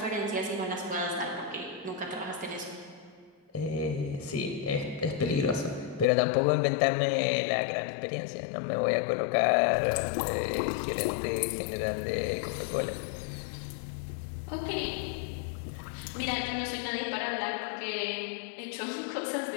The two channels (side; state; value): right; drops out; at 6.1 s